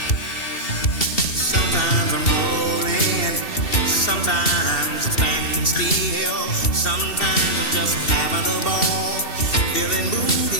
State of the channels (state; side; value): late; right; 2.7 ms